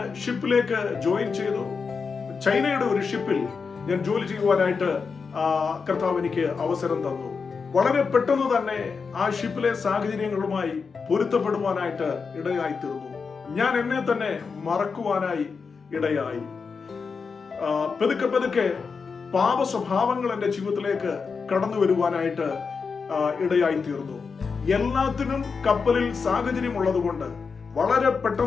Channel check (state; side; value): quieter; right; 5.2 dB